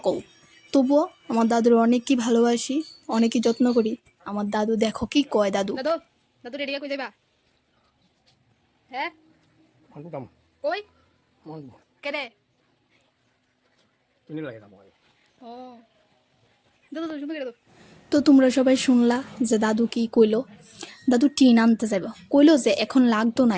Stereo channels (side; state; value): both; identical; correlation 1.00